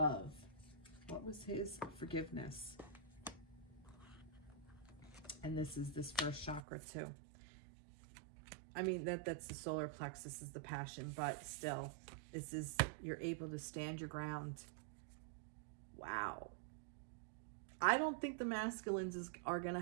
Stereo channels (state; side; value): drops out; left; at 6.6 s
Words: What was his? Forgiveness. And this is this first chakra too. I mean, that's the solar plexus, is the passion, but still, this is, you're able to stand your ground. Wow. I don't think the masculines are going to